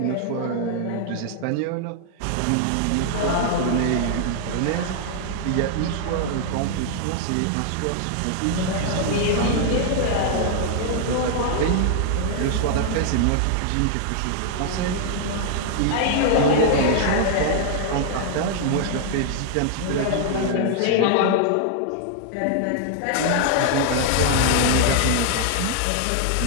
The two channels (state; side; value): different; both; correlation 0.00